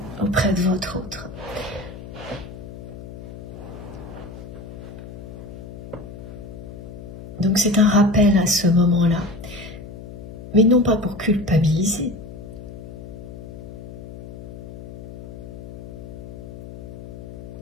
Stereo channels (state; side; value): noise; left; hum, 13 dB below the sound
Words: auprès de votre autre. Donc c'est un rappel à ce moment-là, mais non pas pour culpabiliser,